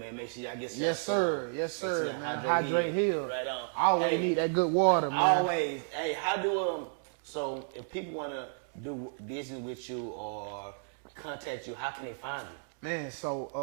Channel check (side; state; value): left; silent; digital silence